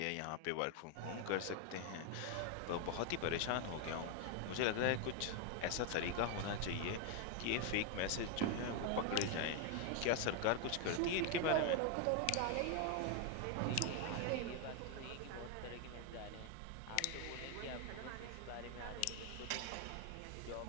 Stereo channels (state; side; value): different; both; correlation 0.01